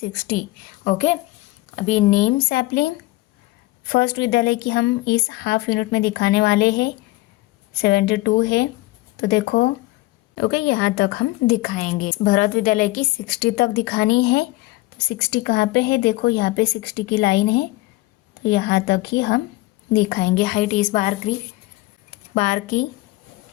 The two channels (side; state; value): right; quieter; 19.6 dB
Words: ओके, अभी नेम सैपलिंग फर्स्ट विद्यालय की हम इस हाफ यूनिट में दिखाने वाले हैं। 72 है तो देखो ओके यहाँ तक हम दिखाएंगे। भरत विद्यालय की 60 तक दिखानी है, तो 60 कहाँ पे है, देखो यहाँ पे 60 की लाइन है, तो यहाँ तक ही हम दिखाएंगे हाइट इस बार की